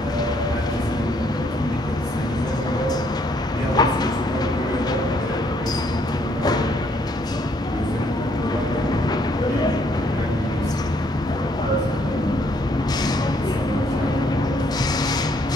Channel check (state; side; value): normal; both; correlation 0.68